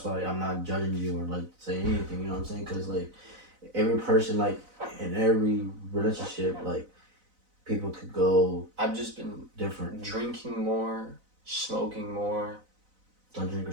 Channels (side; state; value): left; late; 4.0 ms